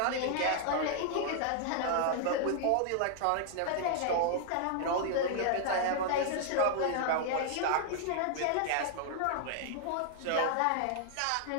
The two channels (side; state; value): both; different; correlation -0.01